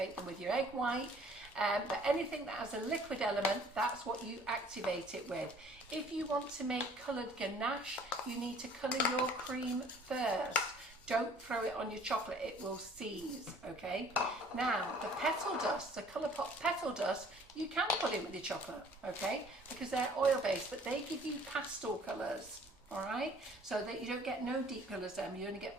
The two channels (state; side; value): normal; both; correlation 0.54